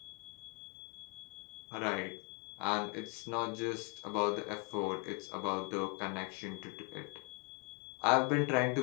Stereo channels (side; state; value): right; quieter; 34.2 dB